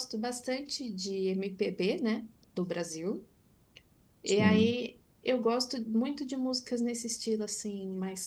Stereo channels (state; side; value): identical; both; correlation 1.00